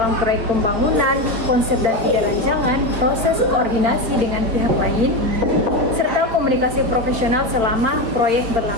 proyek pembangunan, konsep dan ide rancangan, proses koordinasi dengan pihak lain, serta komunikasi profesional selama proyek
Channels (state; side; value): late; left; 4.6 ms